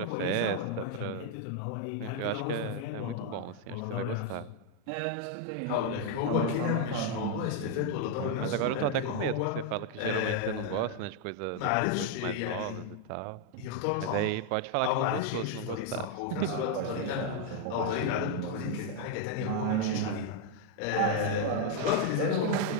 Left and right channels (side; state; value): both; different; correlation 0.00